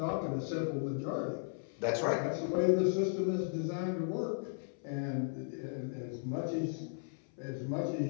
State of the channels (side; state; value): right; silent; 54 dB below the other